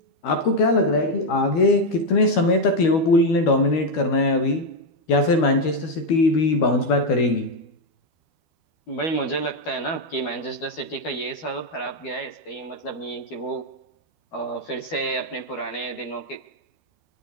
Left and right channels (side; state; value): right; late; 12 ms